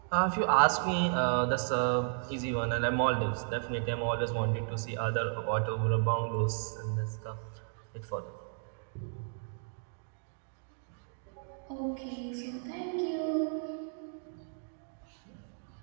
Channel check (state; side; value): silent; left; digital silence